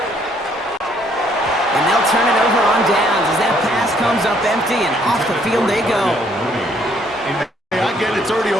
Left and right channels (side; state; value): both; normal; correlation 0.66